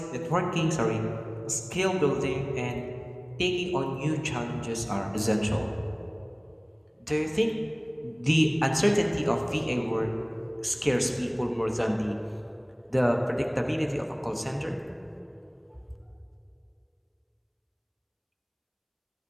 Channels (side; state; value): both; identical; correlation 1.00